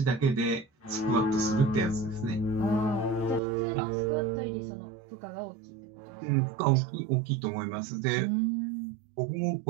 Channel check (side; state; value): left; drops out; at 3.4 s